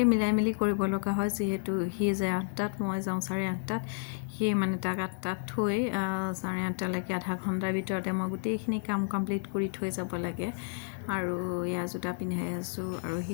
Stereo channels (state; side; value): silent; right; 57 dB below the other